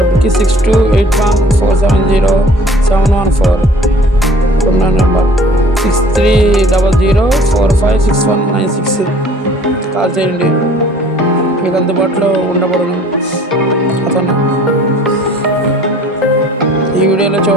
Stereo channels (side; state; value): both; normal; correlation 0.52